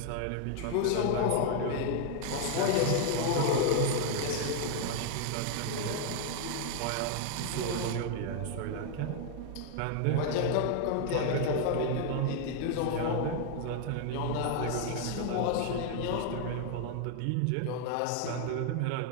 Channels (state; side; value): different; both; correlation 0.00